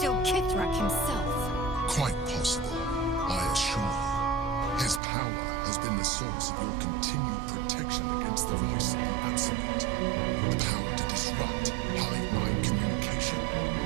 Kithrak himself. Quite possible, I assure you. His power has been the source of your continued protection against the voice of the Absolute. The power to disrupt hive mind communication.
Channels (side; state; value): left; drops out; at 5.0 s